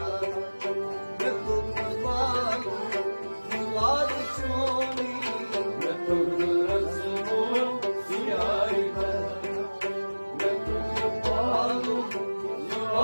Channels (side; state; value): both; inverted; correlation -1.00